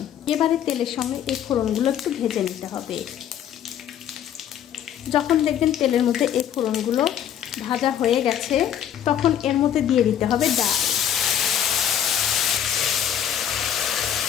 এবারে তেলের সঙ্গে এই ফোড়নগুলো একটু ভেজে নিতে হবে। যখন দেখবেন তেলের মধ্যে এই ফোড়নগুলো ভাজা হয়ে গেছে, তখন এর মধ্যে দিয়ে দিতে হবে ডাল।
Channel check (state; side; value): quieter; right; 9.8 dB